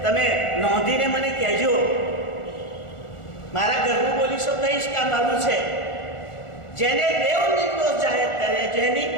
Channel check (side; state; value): right; late; 1.4 ms